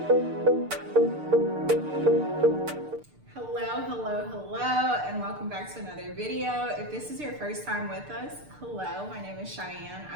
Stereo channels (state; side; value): late; left; 6.7 ms